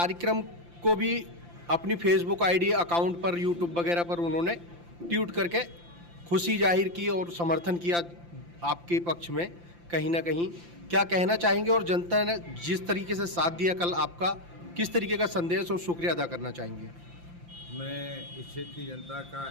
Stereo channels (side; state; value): left; late; 5.8 ms